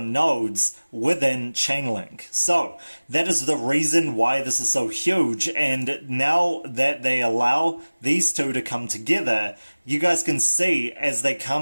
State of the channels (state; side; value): inverted; both; correlation -1.00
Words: nodes within Chainlink. So that is the reason why this is so huge, and now that they allow these two to come together, you guys can see as they